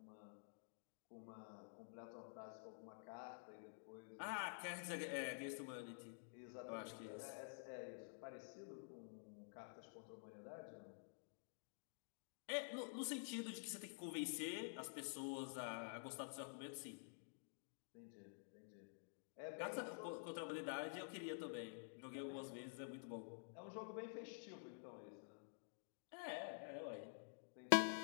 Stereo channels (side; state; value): right; silent; digital silence